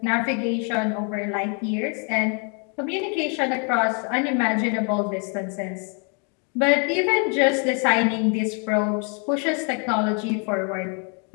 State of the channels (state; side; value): quieter; right; 38.6 dB